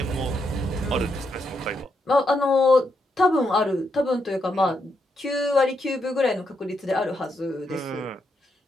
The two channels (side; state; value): both; normal; correlation 0.80